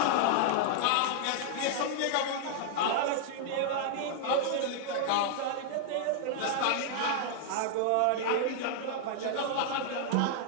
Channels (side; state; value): both; different; correlation -0.01